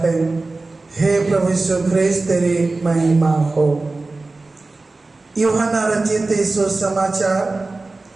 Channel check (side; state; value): left; quieter; 3.4 dB